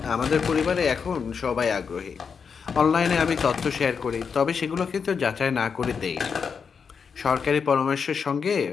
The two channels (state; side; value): quieter; right; 6.1 dB